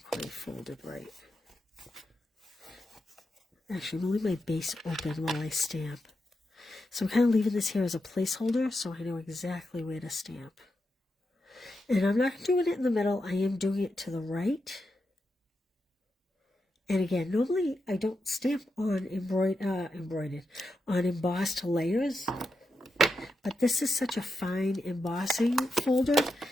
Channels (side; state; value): both; normal; correlation 0.87